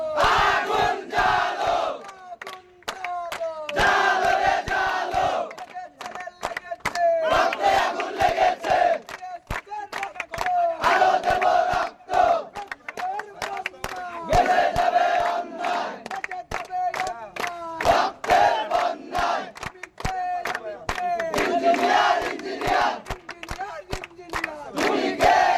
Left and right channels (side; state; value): both; identical; correlation 1.00